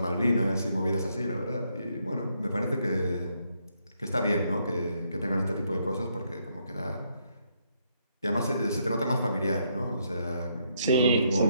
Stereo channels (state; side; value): inverted; both; correlation -0.75